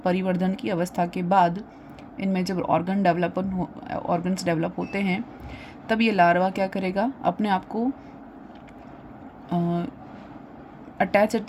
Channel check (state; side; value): identical; both; correlation 1.00